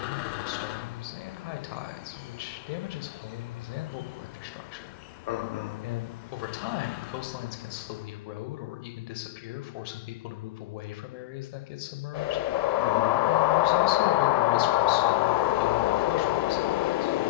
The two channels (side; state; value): right; quieter; 16.6 dB